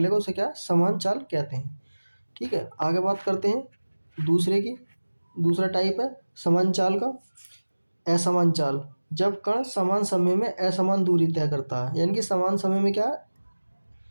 उसे क्या समान चाल कहते हैं। ठीक है, आगे बात करते हैं दूसरे की। दूसरा टाइप है समान चाल का, असमान चाल। जब कण समान समय में असमान दूरी तय करता है, यानी कि समान समय में क्या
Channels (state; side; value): inverted; both; correlation -1.00